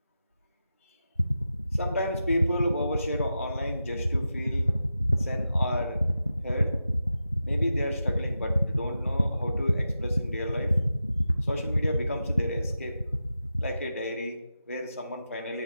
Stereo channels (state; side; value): inverted; both; correlation -0.91